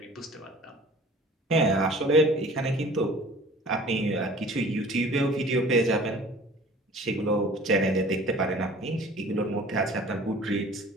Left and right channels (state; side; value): normal; both; correlation 0.47